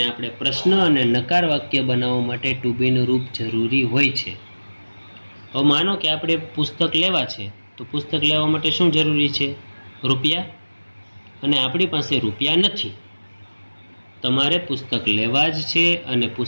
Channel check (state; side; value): inverted; both; correlation -1.00